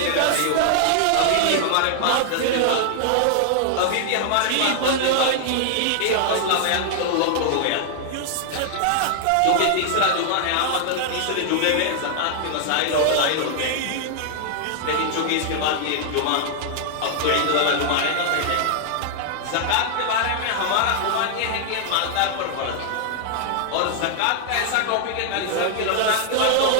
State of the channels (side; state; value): both; different; correlation 0.00